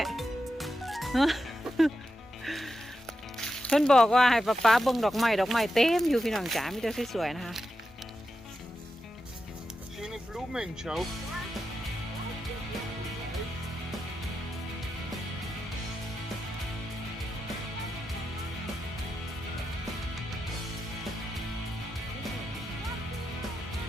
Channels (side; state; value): both; normal; correlation 0.88